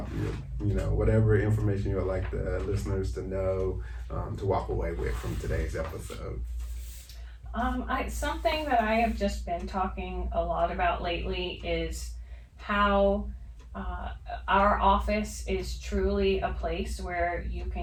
whatever information you would like the listeners to know, to walk away with from today's episode. Something that I have just been talking a lot about lately is how our office is truly a place where you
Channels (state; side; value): identical; both; correlation 1.00